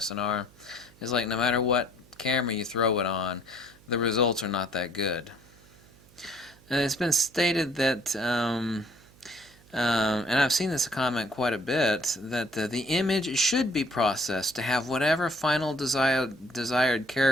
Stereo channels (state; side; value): noise; right; hum, 26 dB below the sound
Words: It's like no matter what camera you throw it on, the results are not that good. And it's been stated that, and I've seen this comment quite a bit, that the image should be processed to have whatever final desired